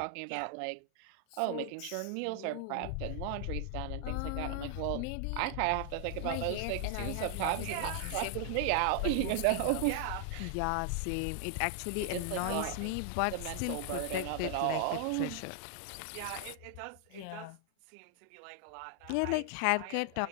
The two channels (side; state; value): both; different; correlation 0.00